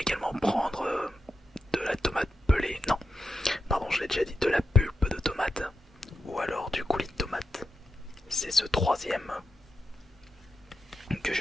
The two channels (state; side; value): normal; both; correlation 0.87